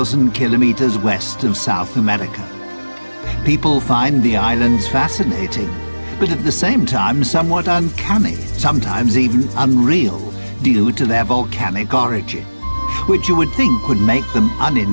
kilometers west of South America. People find the islands fascinating, but at the same time somewhat uncanny, sometimes even unreal, due to their volcanic origin, which you would think would make them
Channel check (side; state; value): both; inverted; correlation -1.00